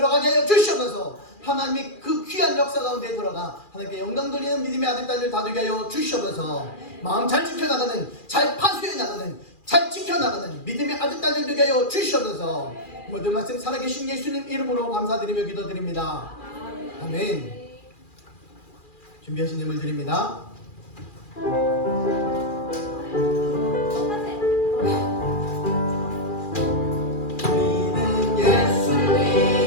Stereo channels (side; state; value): right; late; 2.4 ms